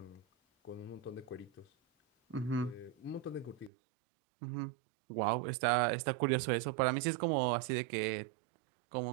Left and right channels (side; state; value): left; drops out; at 3.7 s